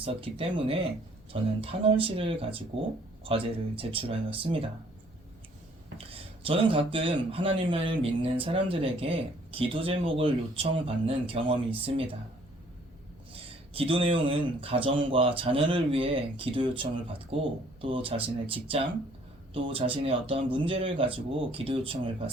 때문에 저는 탄원시를 가지고 과제를 제출하였습니다. 저는 가끔 하나님을 믿는 사람들에게 기도 제목을 요청받는 경험이 있습니다. 기도 내용은 가정과 자녀를 위해 기도 요청을 받고 또 자신의 직장, 또 자신의 어떠한 문제를 가지고 기도 요청을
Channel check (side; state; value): both; normal; correlation 0.60